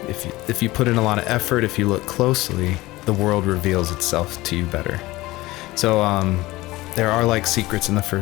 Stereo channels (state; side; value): quieter; right; 19.1 dB